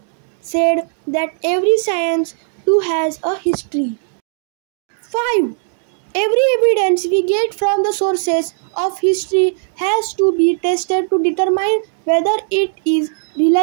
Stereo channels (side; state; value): left; silent; digital silence